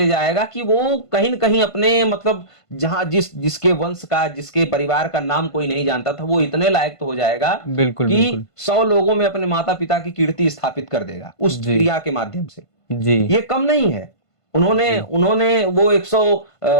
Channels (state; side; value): late; right; 1.5 ms